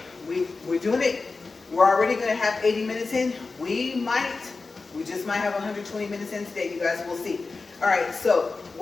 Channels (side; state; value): right; quieter; 4.0 dB